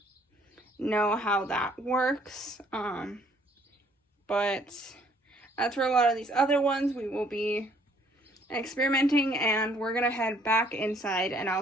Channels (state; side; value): normal; both; correlation 0.63